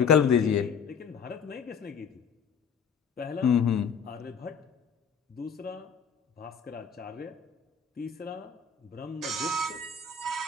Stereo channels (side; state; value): right; quieter; 6.1 dB